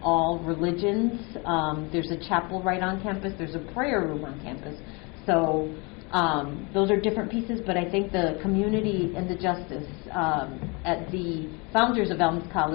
all religions. There's a chapel right on campus. There's a prayer room on campus. So those are different pieces, but I think the community and the justice at the founders of Elms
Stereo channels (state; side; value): quieter; right; 29.6 dB